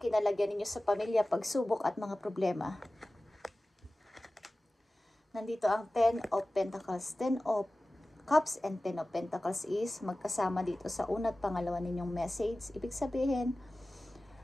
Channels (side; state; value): both; normal; correlation 0.96